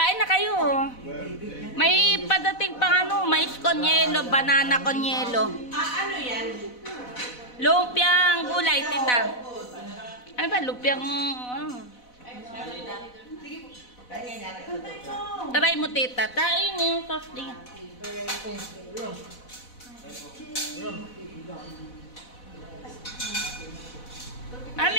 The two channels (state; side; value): late; right; 4.0 ms